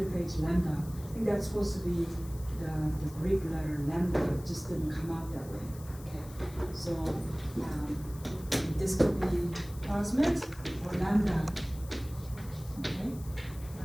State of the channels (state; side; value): noise; left; hiss, 19 dB below the sound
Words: lambda. I think that's supposed to be the Greek letter lambda, it just didn't come out that way. Okay, so this could be plasmid or lambda. Okay,